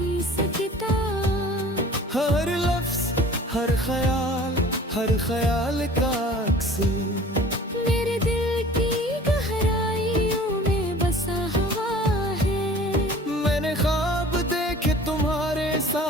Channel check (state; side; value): normal; both; correlation 0.46